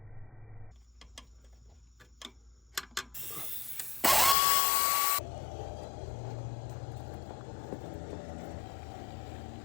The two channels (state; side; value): drops out; right; at 4.4 s